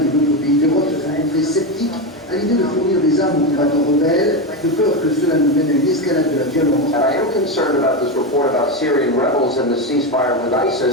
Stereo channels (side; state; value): both; normal; correlation 0.14